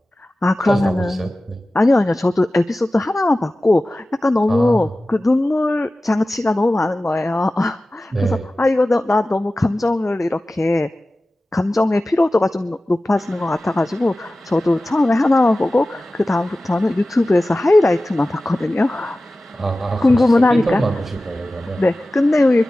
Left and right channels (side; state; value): both; normal; correlation 0.96